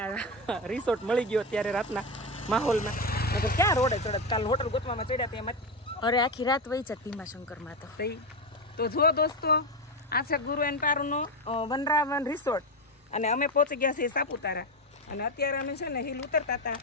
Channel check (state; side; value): normal; both; correlation 0.14